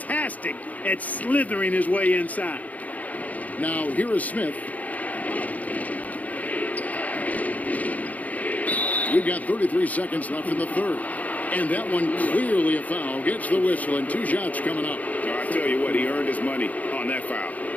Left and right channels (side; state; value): right; late; 0.075 ms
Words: at slithering his way inside. Now here is Smith. We've got 33 seconds left in the third. And that one clearly a foul. Gets the whistle and 2 shots coming up. I tell you what, he earned his money on that foul.